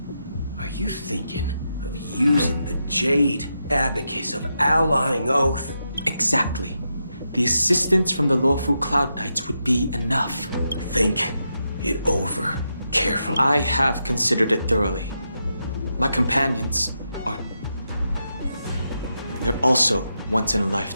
Are you thinking of using the Jade Abacus of Allying Oath? Exactly. the assistance from the lawful Cloud Knights would be enough. Think it over carefully. I have considered it thoroughly. My companions are... they're also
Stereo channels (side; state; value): both; inverted; correlation -0.85